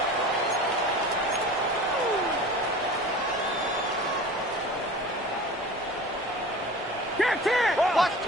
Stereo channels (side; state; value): both; normal; correlation 0.38